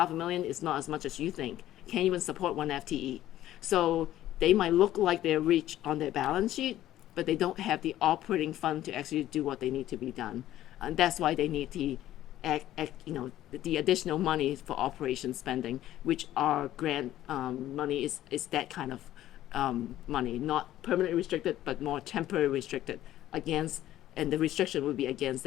is not as much as you think. Can't even support one FTE. So they might look like they're rich on their balance sheet, but they don't have the operating fund to actually do what they need to be done. And that's why they need the additional money for operation spending, which our grant money is that kind of money, not permanently restricted, but more temporary restricted against, and the restriction would be against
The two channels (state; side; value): quieter; right; 13.5 dB